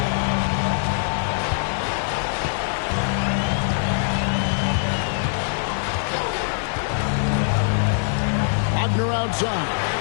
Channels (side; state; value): right; silent; 62 dB below the other